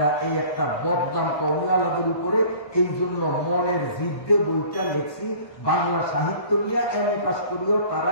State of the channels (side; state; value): right; late; 1.2 ms